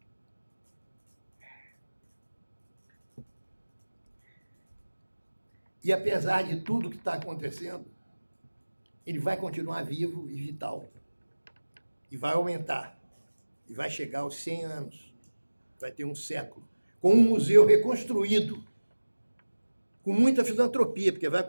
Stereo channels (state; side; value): inverted; both; correlation -1.00